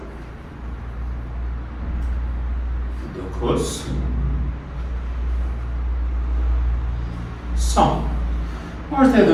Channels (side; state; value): both; identical; correlation 1.00